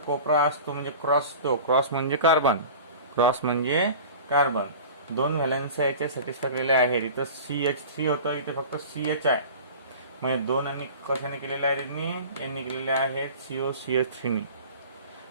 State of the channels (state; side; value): inverted; both; correlation -0.39